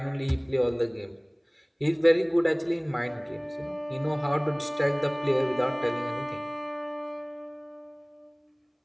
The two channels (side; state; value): both; identical; correlation 1.00